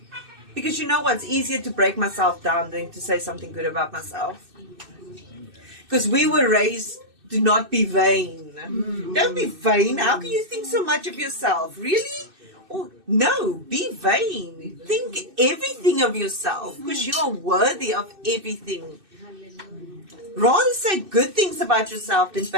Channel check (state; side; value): late; left; 2.6 ms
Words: Because you know what's easier to break myself down than to say something good about myself. Because we were raised to not be vain. Don't be vain. How can you think so much of yourself? Really? Oh, no, be vain. Think everything of yourself because you are worthy of everything. Rather say good things about yourself than